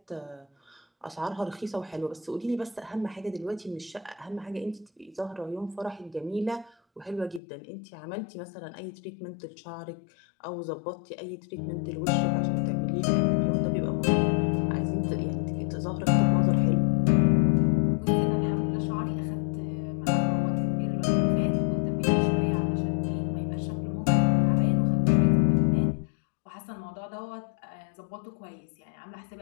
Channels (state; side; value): drops out; right; at 7.4 s